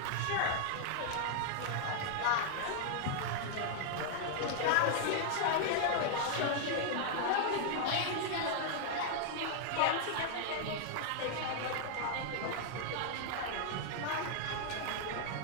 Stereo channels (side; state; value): both; different; correlation 0.00